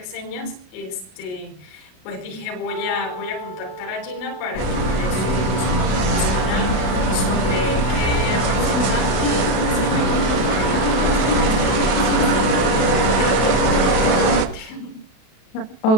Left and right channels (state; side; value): late; right; 32 ms